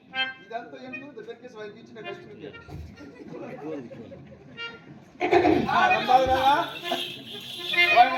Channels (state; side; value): identical; both; correlation 1.00